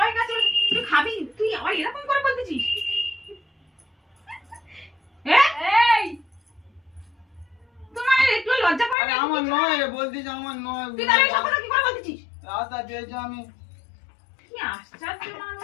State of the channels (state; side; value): drops out; right; at 9.0 s